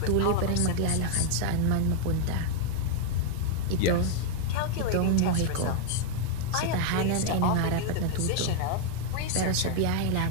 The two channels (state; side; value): different; both; correlation 0.00